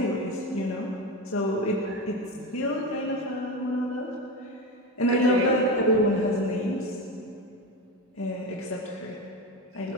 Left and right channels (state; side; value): normal; both; correlation 0.20